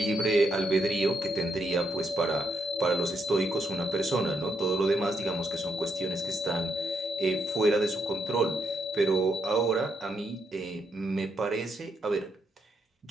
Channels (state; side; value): normal; both; correlation 0.78